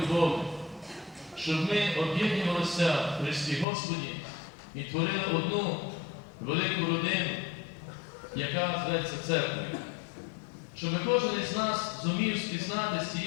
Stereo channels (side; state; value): right; drops out; at 3.7 s